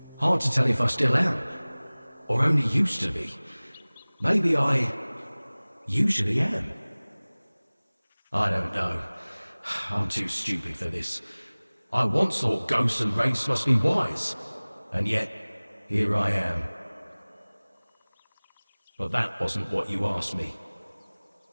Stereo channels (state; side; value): inverted; both; correlation -1.00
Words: Hard to tell if I still am. Or only used to be. Maybe I usually am. I don't know. I'm too stupid for this. I once thought ghosts and wraiths must be wise. And yet, here I am. But that wasn't what you asked me.